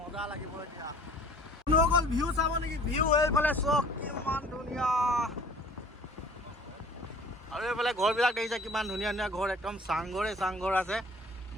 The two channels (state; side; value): normal; both; correlation 0.50